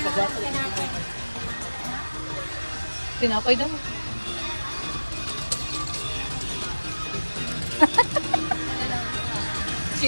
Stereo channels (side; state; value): both; inverted; correlation -1.00